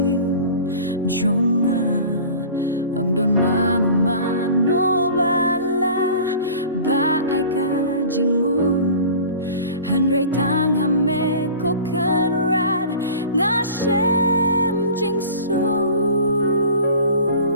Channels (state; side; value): inverted; both; correlation -0.40